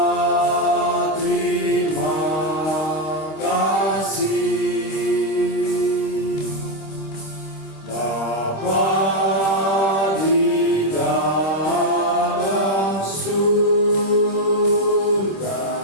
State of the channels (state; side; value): late; right; 26 ms